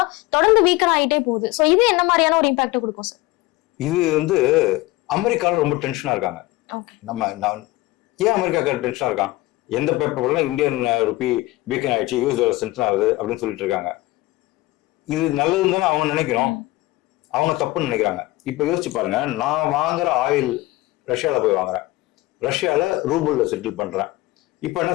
தொடர்ந்து வீக்கர் ஆகிட்டே போகுது. சோ இது என்ன மாதிரியான ஒரு இம்பாக்ட் கொடுக்கும் சார்? இது வந்து அமெரிக்கால ரொம்ப டென்ஷனா இருக்காங்க. ஏன் அமெரிக்கா டென்ஷனா இருக்கான்? எந்த பேப்பர்லாம் இந்தியன் ருப்பி வீக்கன் ஆயிடுச்சு, யூஎஸ் டாலர் டென்ஷன் ஆகுது அப்படின்னு சொல்லிட்டு இருக்காங்க. இது நல்லதுன்னு தானே அவங்க நினைக்கணும், அவங்க தப்புன்னு நினைக்கிறாங்க. இப்ப யோசிச்சு பாருங்க, நான் வாங்குற ஆயில் ரஷ்யால போய் வாங்குறேன், ரஷ்யால ரூபிள்ல செட்டில் பண்றேன். இப்ப என்ன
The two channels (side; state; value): right; quieter; 19.4 dB